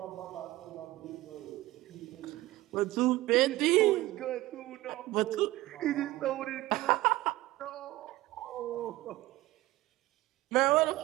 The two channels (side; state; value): left; quieter; 17.8 dB